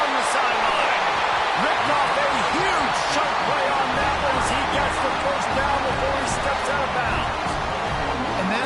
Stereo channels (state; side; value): identical; both; correlation 1.00